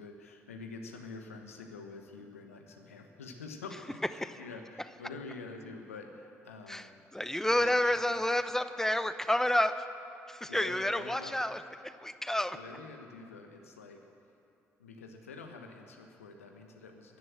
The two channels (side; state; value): both; normal; correlation 0.92